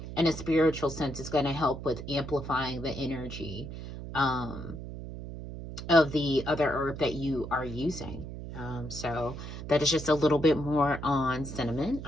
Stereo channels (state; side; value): noise; right; hum, 9 dB below the sound